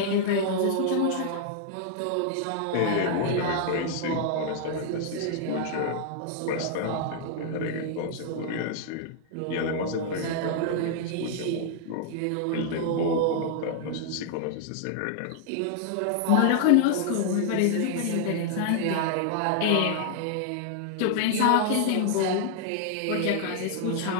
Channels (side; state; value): both; different; correlation -0.01